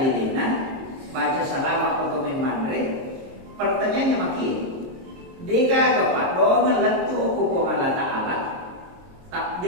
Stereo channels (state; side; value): late; left; 22 ms